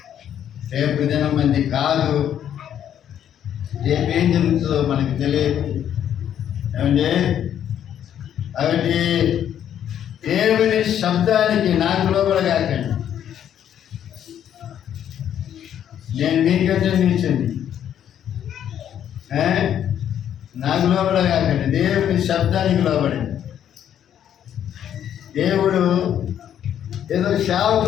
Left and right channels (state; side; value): quieter; right; 9.9 dB